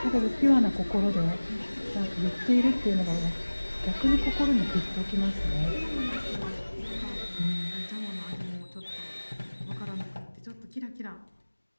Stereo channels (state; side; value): inverted; both; correlation -1.00